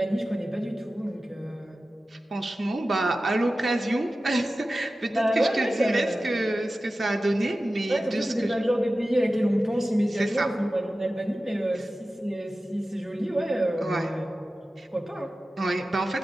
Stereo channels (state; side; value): normal; both; correlation 0.95